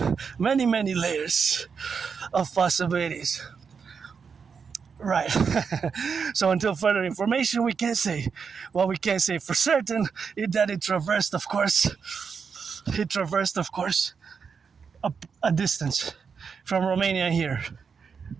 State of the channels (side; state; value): left; quieter; 6.0 dB